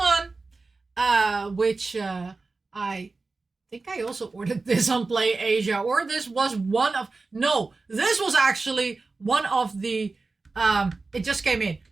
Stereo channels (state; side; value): quieter; left; 3.8 dB